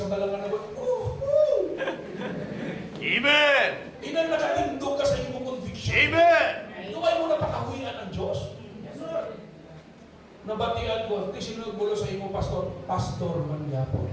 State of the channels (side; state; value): both; identical; correlation 1.00